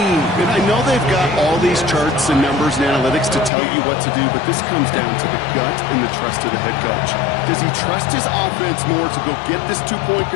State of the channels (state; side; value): drops out; right; at 3.5 s